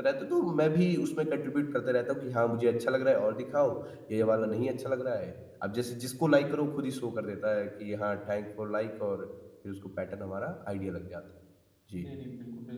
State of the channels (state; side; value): identical; both; correlation 1.00